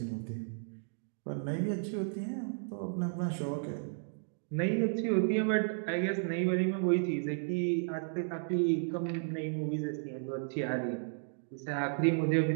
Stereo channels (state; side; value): silent; left; digital silence